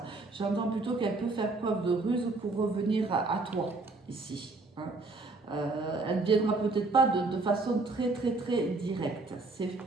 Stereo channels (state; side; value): quieter; left; 3.4 dB